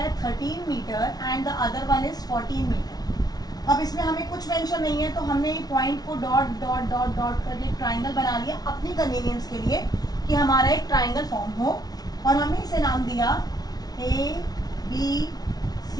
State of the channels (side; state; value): right; late; 0.19 ms